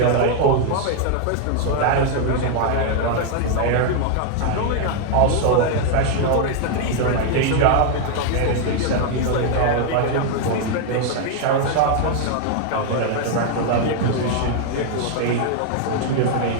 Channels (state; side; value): different; both; correlation 0.00